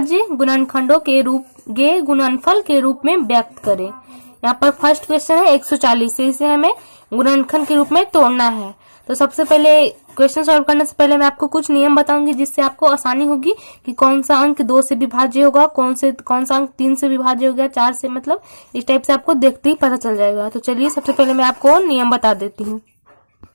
गुणनखंडों के गुणनफल के रूप में व्यक्त करें। यहाँ पर फर्स्ट क्वेश्चन है 140 से इसे हमें गुणनखंड के रूप में तोड़ना है। तो सबसे पहले क्वेश्चन सॉल्व करने से पहले मैं आपको कुछ नियम बताऊंगी जिससे आपको आसानी होगी कि कौन सा अंक 2 से विभाज्य होगा, कौन सा अंक 3 से विभाज्य हो गया, 4 से, मतलब इस टाइप से आपको देखते ही पता चल जाएगा। तो चलिए सबसे पहले मैं आपको नियम बता देती हूँ।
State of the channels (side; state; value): both; inverted; correlation -1.00